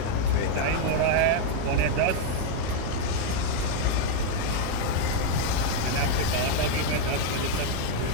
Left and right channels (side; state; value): both; different; correlation 0.00